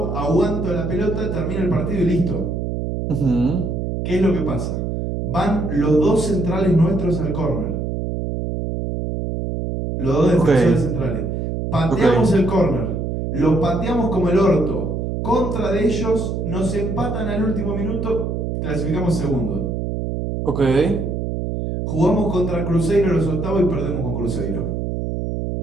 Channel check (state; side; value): noise; right; hum, 2 dB below the sound